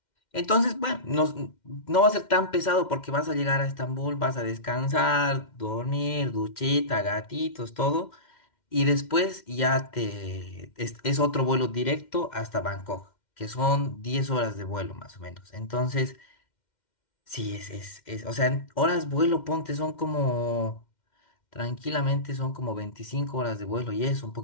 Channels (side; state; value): right; late; 2.1 ms